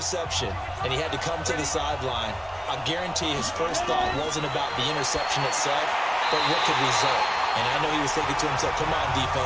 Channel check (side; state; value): both; identical; correlation 1.00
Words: and he had to come to the sideline, I guarantee his first thought wasn't about the interception itself, but what could result. And I know he was thinking to himself, come on,